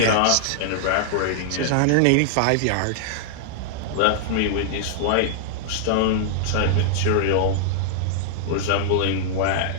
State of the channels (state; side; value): different; both; correlation -0.01